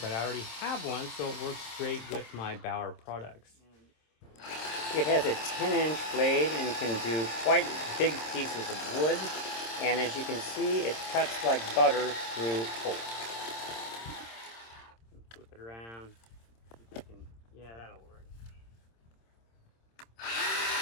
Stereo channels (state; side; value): late; right; 26 ms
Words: but I already have one, so it works great with my Bauer products. It has a 10-inch blade and can do quite big pieces of wood. And as you can see, it cuts like butter through oak. Flip it around. Yeah, that'll work.